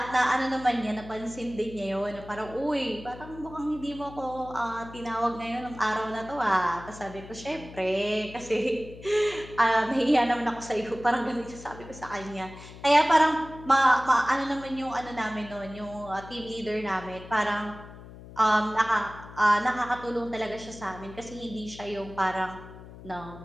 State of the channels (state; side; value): noise; left; hum, 16 dB below the sound